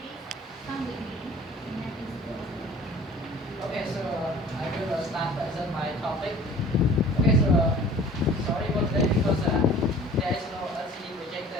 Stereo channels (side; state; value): both; normal; correlation 0.47